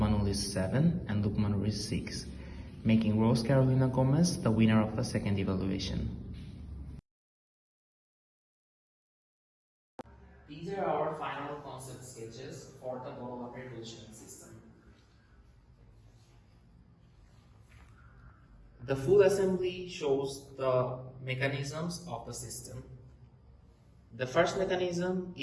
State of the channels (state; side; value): identical; both; correlation 1.00